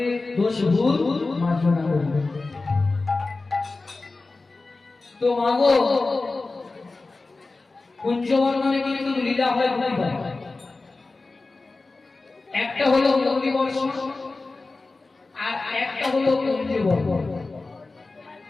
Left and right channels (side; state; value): right; quieter; 3.5 dB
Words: দোষ ভুল মার্জনা করবে। তো মাগো, কুঞ্জবর্ণনে কিন্তু লীলা হয় দুইবার, একটা হলো মুরলী বর্ষণ আর একটা হলো কুঞ্জবর্ণন।